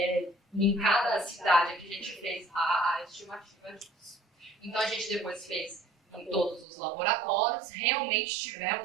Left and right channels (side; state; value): left; drops out; at 6.7 s